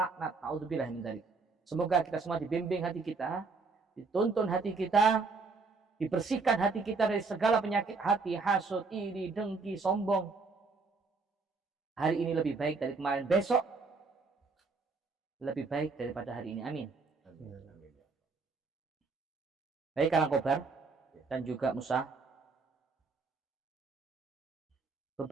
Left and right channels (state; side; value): quieter; left; 4.3 dB